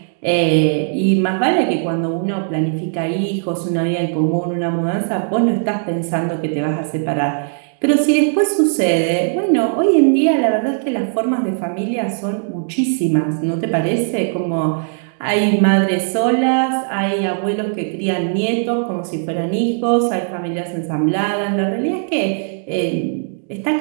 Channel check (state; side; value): silent; left; digital silence